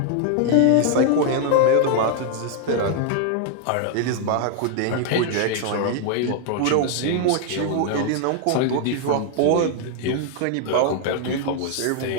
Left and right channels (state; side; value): different; both; correlation 0.00